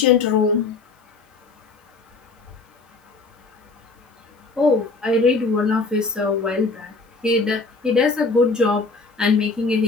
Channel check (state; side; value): quieter; right; 3.9 dB